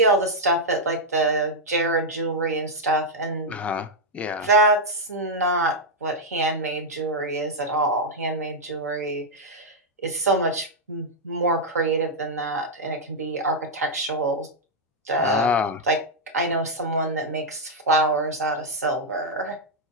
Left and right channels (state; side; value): normal; both; correlation -0.03